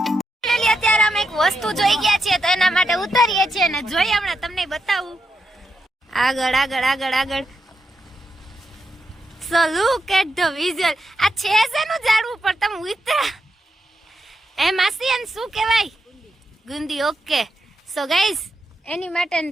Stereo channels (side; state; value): both; normal; correlation 0.84